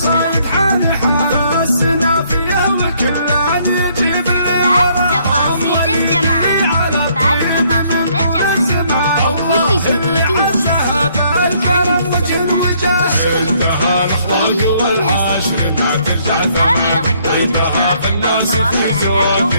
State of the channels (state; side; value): inverted; both; correlation -0.66